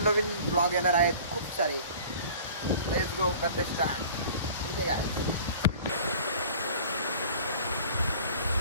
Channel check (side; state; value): both; inverted; correlation -0.45